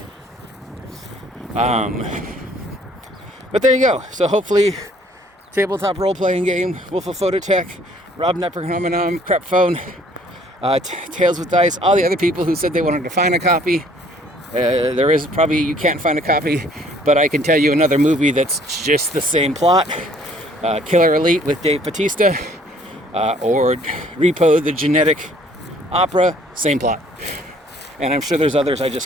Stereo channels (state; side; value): normal; both; correlation 0.59